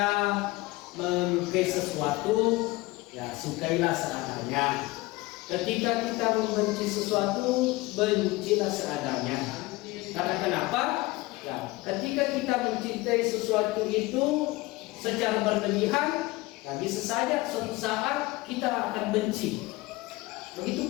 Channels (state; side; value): quieter; right; 21.0 dB